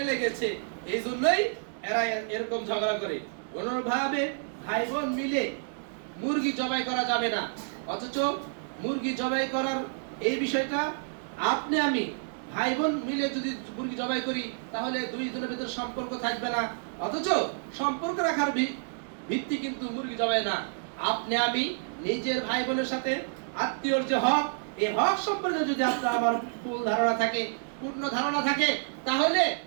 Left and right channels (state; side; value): silent; left; 58 dB below the other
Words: লেগেছে, এই জন্যই এরা এরকম ঝগড়া করে। কোনোভাবে ভাই বোন মিলে মুরগি জবাই করা যাবে না, অথচ মুরগি জবাই করার এই বিষয়টা আপনি আমি ভাই বোন মিলে যদি মুরগি জবাই করি তাহলে দুই জনের ভিতরে সম্পর্ক থাকবে না, অথচ সম্পর্ক রাখার ভিত্তি কিন্তু মুরগি জবাই না। আপনি আমি নিজের ভাই বোনের সাথে আত্মীয়র যে হক, এই হক সম্পর্কে যদি আপনার আমার পূর্ণ ধারণা থাকে, তাহলে